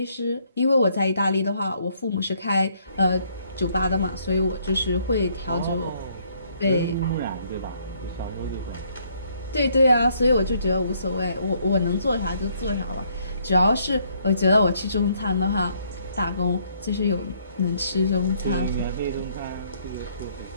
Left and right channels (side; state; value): both; inverted; correlation -0.68